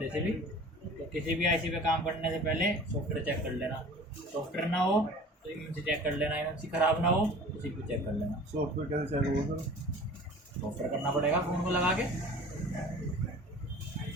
से भी। तो किसी भी आईसी पे काम करने से पहले सॉफ्टवेयर चेक कर लेना, सॉफ्टवेयर ना हो तो एमएमसी चेक कर लेना, एमएमसी ख़राब ना हो तो सीपीयू चेक कर लेना। सॉफ्टवेयर कैसे चेक होगा सर? सॉफ्टवेयर करना पड़ेगा फ़ोन को लगा के,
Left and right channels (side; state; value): both; normal; correlation 0.43